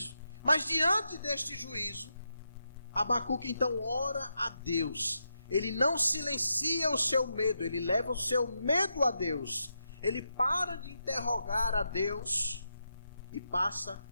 Mas diante deste juízo, Abacuque então ora a Deus. Ele não silencia o seu medo, ele leva o seu medo a Deus. Ele para de interrogar a Deus e passa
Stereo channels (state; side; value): inverted; both; correlation -0.85